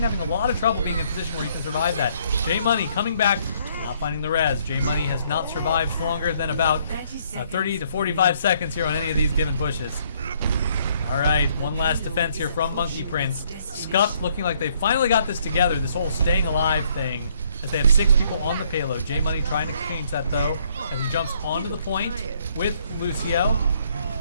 having a lot of trouble being in a position where he can survive that. J Money coming back, not finding the res. J Money has not survived longer than about 30 to 45 seconds here on any of these given pushes. All right, one last defense here from Monkey Prince. Scuffed looking like they finally got this together, this whole staying alive thing, as they have 6 people on the payload. J-Money trying to change that though, as he jumps onto the point with Lucio.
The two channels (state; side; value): inverted; both; correlation -0.67